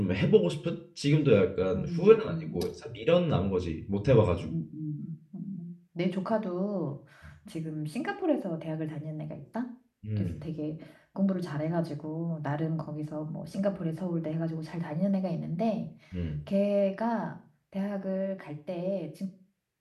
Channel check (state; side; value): identical; both; correlation 1.00